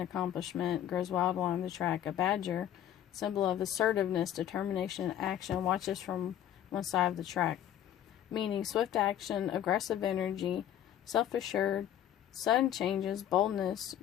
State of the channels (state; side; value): quieter; right; 10.9 dB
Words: grows wild along the track. A badger, symbol of assertiveness, determination, and action, watches from one side of the track, meaning swift action, aggressive energy, self-assured, sudden changes, boldness,